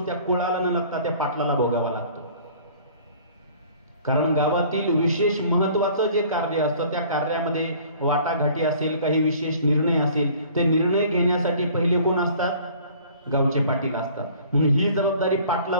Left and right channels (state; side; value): inverted; both; correlation -0.51